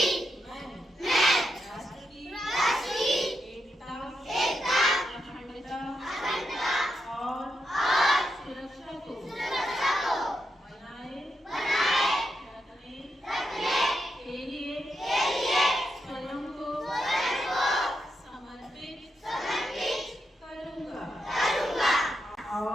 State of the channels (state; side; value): normal; both; correlation 0.85